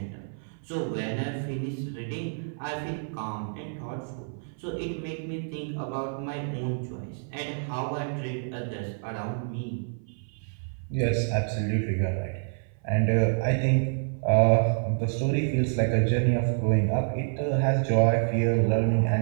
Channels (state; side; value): silent; left; 57 dB below the other